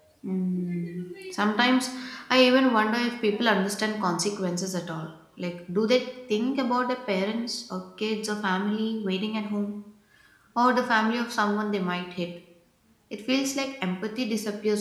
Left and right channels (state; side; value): identical; both; correlation 1.00